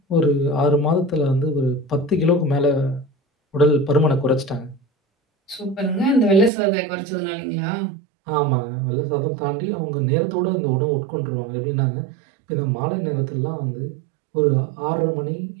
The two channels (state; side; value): drops out; left; at 6.5 s